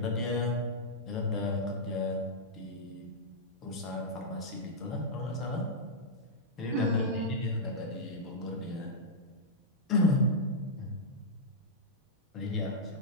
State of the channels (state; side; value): normal; both; correlation -0.09